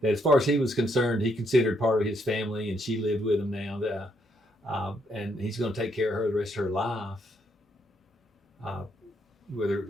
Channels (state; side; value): normal; both; correlation 0.74